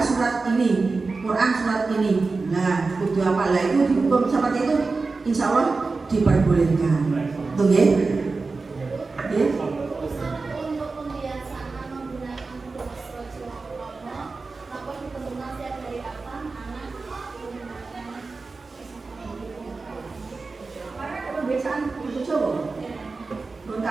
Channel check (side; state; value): left; quieter; 4.0 dB